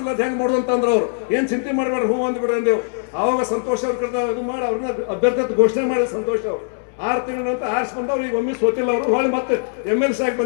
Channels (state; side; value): silent; right; digital silence